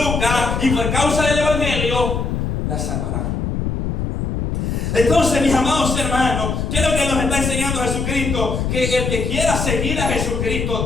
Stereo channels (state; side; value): noise; left; rumble, 1 dB below the sound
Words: y por causa del evangelio, la salvará. Entonces, mis amados hermanos, ¿qué es lo que nos está enseñando Jesucristo? Que el que quiera seguir a